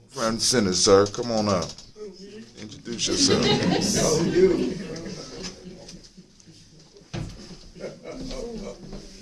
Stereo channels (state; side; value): identical; both; correlation 1.00